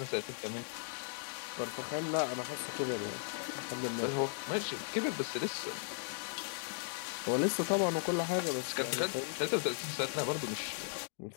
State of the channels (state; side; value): silent; right; digital silence